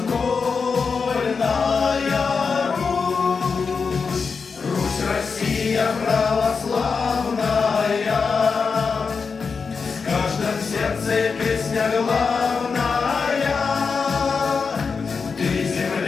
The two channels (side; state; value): right; quieter; 5.2 dB